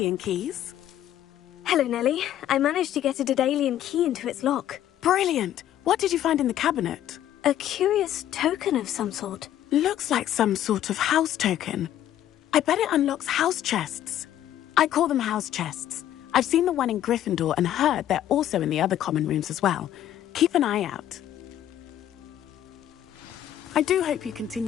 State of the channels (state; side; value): quieter; right; 11.7 dB